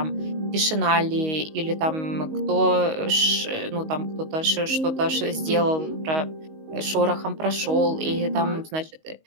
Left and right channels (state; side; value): late; left; 19 ms